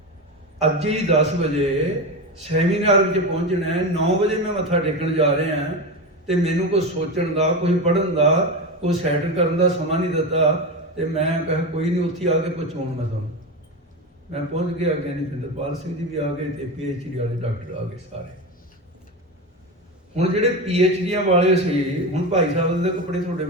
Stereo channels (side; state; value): both; normal; correlation 0.20